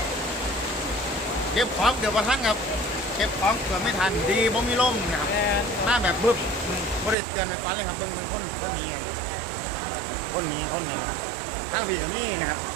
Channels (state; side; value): drops out; left; at 7.2 s